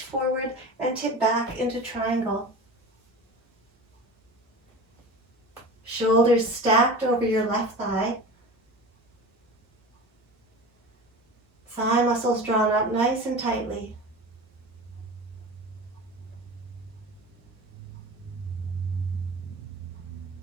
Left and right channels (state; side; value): normal; both; correlation 0.33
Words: forward and tip back into triangle. Shoulders stacked over your left thigh. Thigh muscles drawn up nice and tightly.